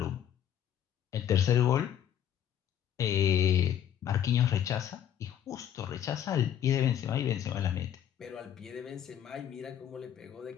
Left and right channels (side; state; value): right; quieter; 10.0 dB